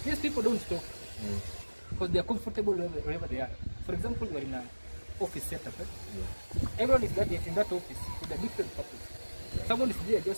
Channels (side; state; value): both; inverted; correlation -1.00